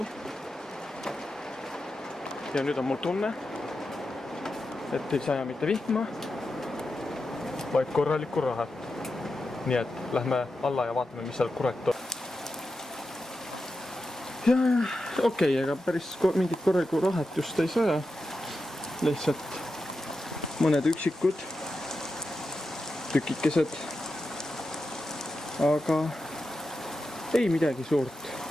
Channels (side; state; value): both; normal; correlation 0.90